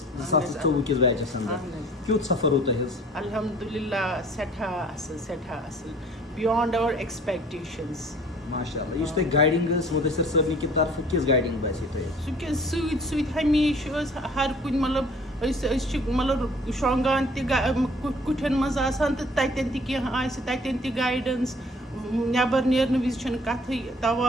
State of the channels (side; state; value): both; normal; correlation 0.52